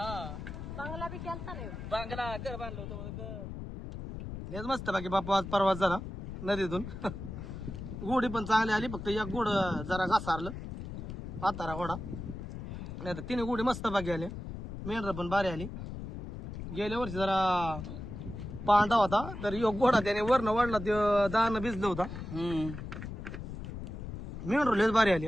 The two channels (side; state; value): left; noise; rumble, 8 dB below the sound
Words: बंगला बी केलता नाही. बांगला घर बांधलं होतं मला, घर. लयच मस्त बाकी बापू आज प्रवास झाला नदीतून. गोडी पण चांगली आली, फक्त एक गोड जरा घासारलं म्हातारा घोडा. नाही तर 3 गोडी मस्त बाकी आली. मेंढर पण भारी आली. गेल्या वर्षी जरा पांढरा होता तर एक घोडा त्याने वरनं वाढला, ते दाणं भिजलं होता. मेंढर लयच भारी आली.